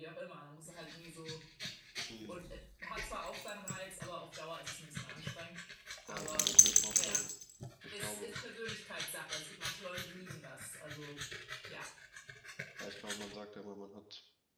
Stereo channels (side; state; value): both; identical; correlation 1.00